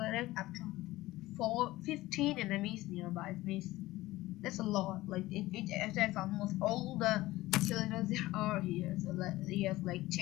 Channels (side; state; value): right; quieter; 17.8 dB